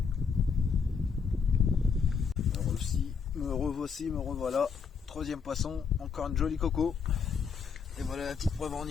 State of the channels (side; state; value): right; quieter; 5.9 dB